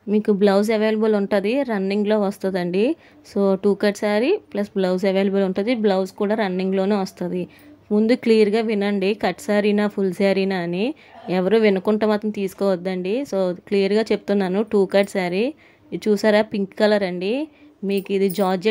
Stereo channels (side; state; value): both; identical; correlation 1.00